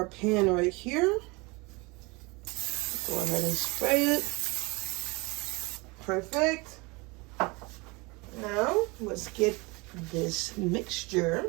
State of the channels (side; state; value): left; quieter; 26.0 dB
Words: pan right here. Go ahead and spray it. Perfect. Now, let's get this